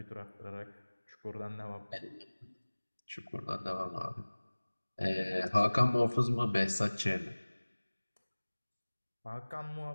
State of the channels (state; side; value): inverted; both; correlation -1.00